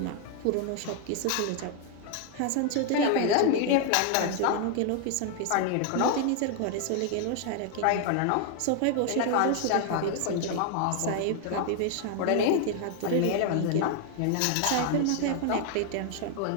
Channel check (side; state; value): both; different; correlation 0.00